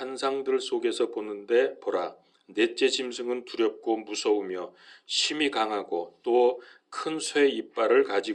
속에서 보는데 보라, 넷째 짐승은 두렵고 무서우며 심히 강하고 또 큰 쇠 이빨을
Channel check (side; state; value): both; identical; correlation 1.00